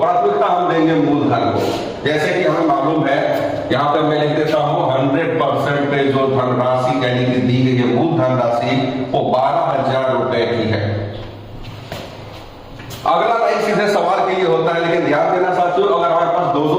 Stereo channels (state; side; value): identical; both; correlation 1.00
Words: हम देंगे मूलधन को। जैसे कि हमें मालूम है, यहाँ पे मैं लिख देता हूँ 100% पे जो धनराशि यानी कि दी गई है मूल धनराशि, वो 12,000 रुपए की है। अगला लाइन सीधे सवाल के लिए होता है, लेकिन ध्यान देना साथियों, अगर हमारे पास दो